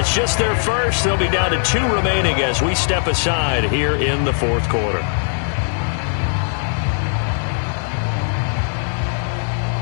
just their first. They'll be down to 2 remaining as we step aside here in the fourth quarter.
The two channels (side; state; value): right; silent; 66 dB below the other